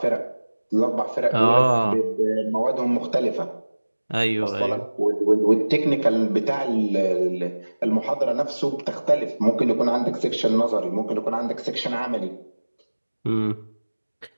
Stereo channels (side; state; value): both; inverted; correlation -1.00